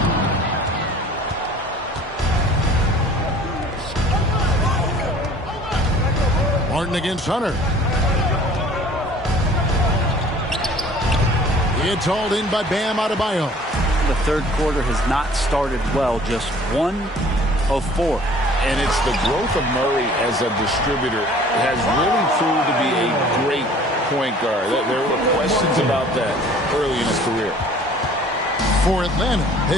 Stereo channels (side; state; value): both; normal; correlation 0.51